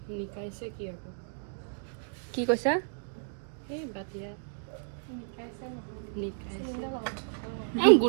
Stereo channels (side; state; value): left; silent; digital silence